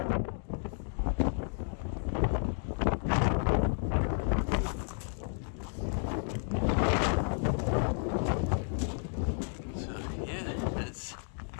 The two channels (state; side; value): silent; right; 56 dB below the other